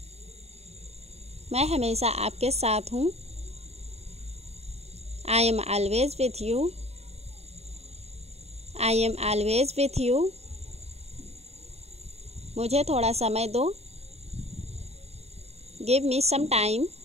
मैं हमेशा आपके साथ हूँ। I am always with you, I am always with you. मुझे थोड़ा समय दो। Give me some time,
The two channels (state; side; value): late; left; 0.31 ms